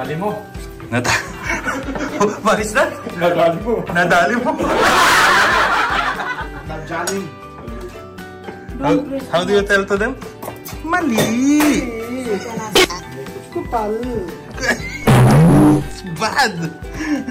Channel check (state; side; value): identical; both; correlation 1.00